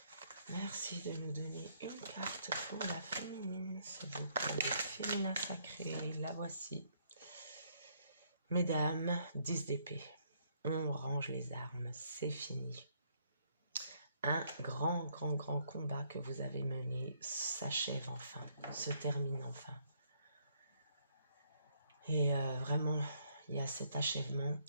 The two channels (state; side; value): inverted; both; correlation -0.69